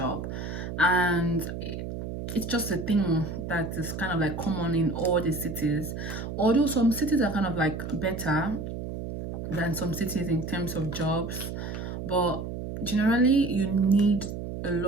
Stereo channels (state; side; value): noise; right; hum, 6 dB below the sound